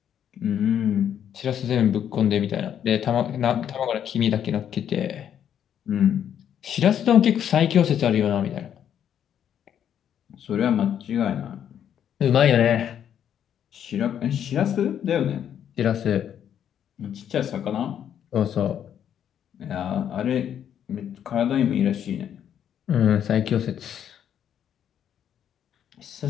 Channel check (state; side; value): quieter; right; 9.4 dB